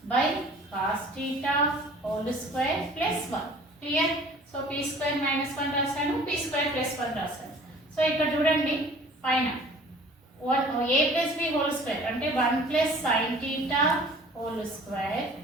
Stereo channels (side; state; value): both; normal; correlation 0.49